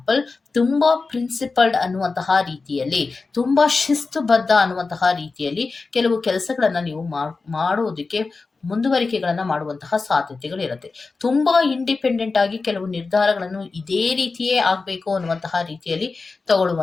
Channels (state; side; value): quieter; right; 4.1 dB